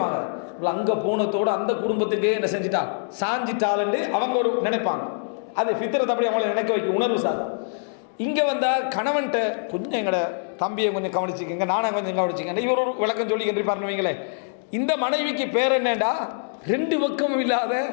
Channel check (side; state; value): right; silent; digital silence